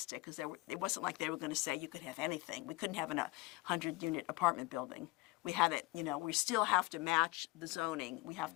because it wasn't like they were going to say you could have anything. We couldn't have a 100-unit apartment building. We had it, you know, we still have to match the zoning. We have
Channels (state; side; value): quieter; right; 21.0 dB